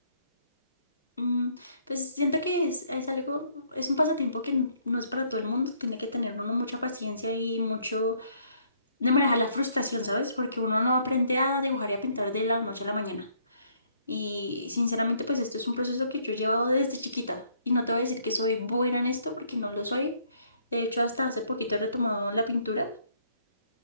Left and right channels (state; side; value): inverted; both; correlation -0.67